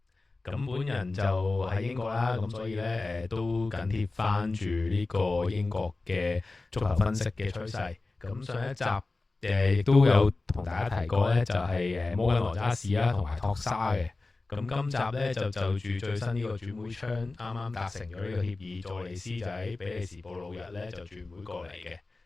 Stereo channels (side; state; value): right; quieter; 3.4 dB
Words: 咁本人就喺英國啦，咁所以咧都緊貼翻住呢個英國嘅足球分析嘅趨勢。咁上一集亦都有同大家提過咧，就係摩根羅渣士啦，同埋托沙嘅。咁今集咧就住最新呢個轉會窗啱啱達成咗呢個協議，佐利斯就喺比利時布魯日咧就轉會過嚟嘅。